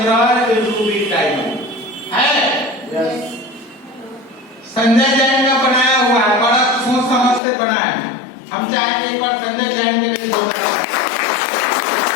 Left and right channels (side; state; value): right; drops out; at 7.4 s